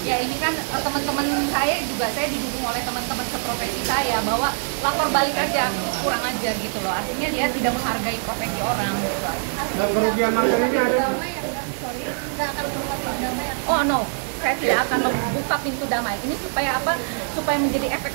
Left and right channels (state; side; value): silent; left; digital silence